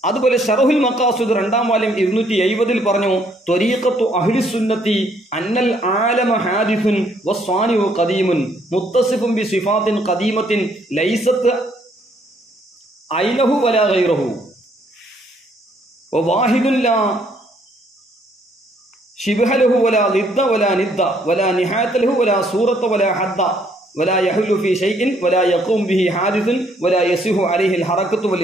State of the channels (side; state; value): both; normal; correlation 0.67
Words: അതുപോലെ ശറഹുൽ മഖാസിദ് 2ാം വാല്യം 270 പറഞ്ഞു ത്വരീഖത്തു അഹ്ലി സുന്നത്തി അന്നൽ ആലമ ഹാദിസുൻ വസ്വാനിഉ ഖദീമുൻ മുത്തസിഫുൻ ബി സിഫാത്തിൻ ഖദീമത്തിൻ ലൈസത്ത് ഐനഹു വലാ ഗൈറഹു വവാഹിദുൻ ലാ شبه له ولا ضد ولا ند ولا نهاية له ولا صورة ولا حد ولا يحل في شيء ولا يقوم به حادث ولا يصح عليه الحركة